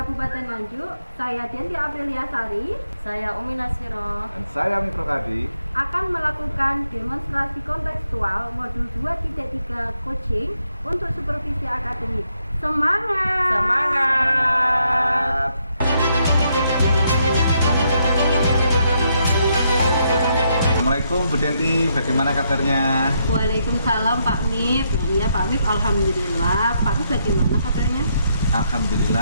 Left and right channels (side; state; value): both; inverted; correlation -0.77